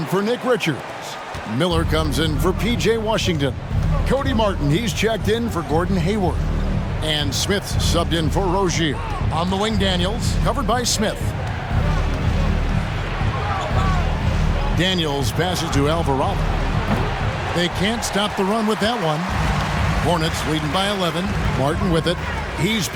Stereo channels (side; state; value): both; identical; correlation 1.00